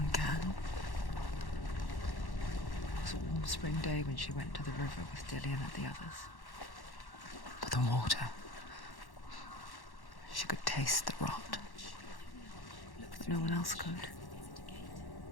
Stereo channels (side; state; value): right; late; 1.1 ms